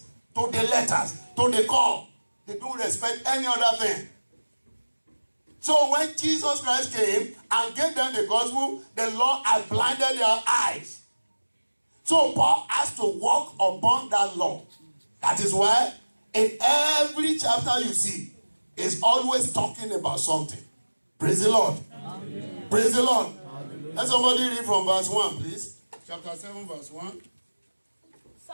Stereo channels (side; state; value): both; inverted; correlation -1.00